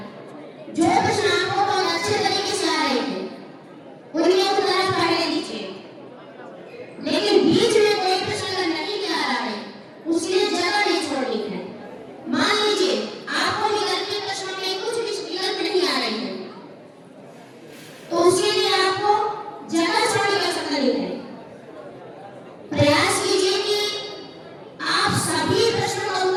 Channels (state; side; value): identical; both; correlation 1.00